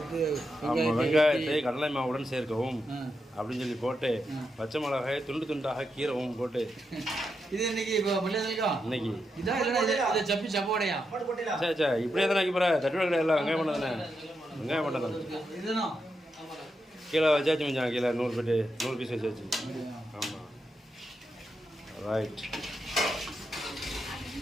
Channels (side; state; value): both; normal; correlation 0.85